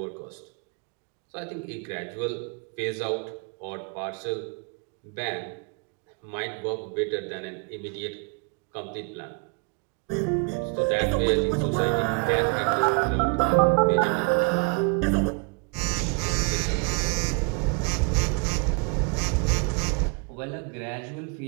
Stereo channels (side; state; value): left; quieter; 33.8 dB